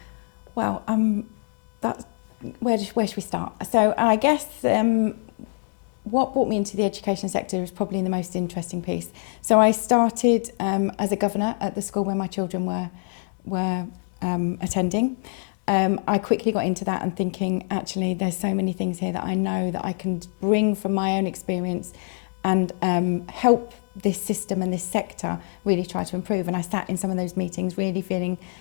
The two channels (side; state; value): right; silent; 62 dB below the other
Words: Well, where should we start? So I guess what brought me into the education sector is probably the most interesting piece. So I started as a governor at the school where my children were attending. I quickly got into that and thinking, actually, there's so many things here that I know that I can bring from my own experience and help this system and this sector really try to improve. And I sat in some of those meetings really feeling